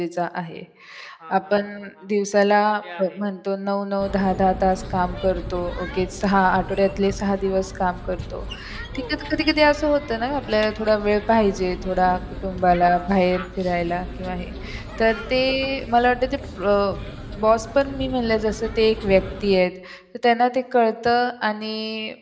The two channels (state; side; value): identical; both; correlation 1.00